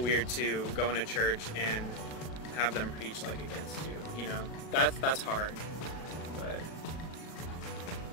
to go into church and have them preach like against you. You know, that's hard. But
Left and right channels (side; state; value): right; late; 37 ms